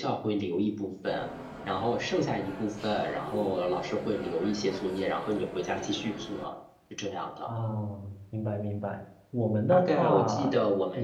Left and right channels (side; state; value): both; identical; correlation 1.00